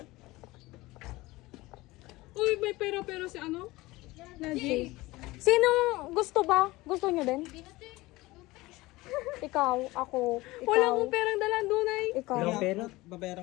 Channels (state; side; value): quieter; right; 20.2 dB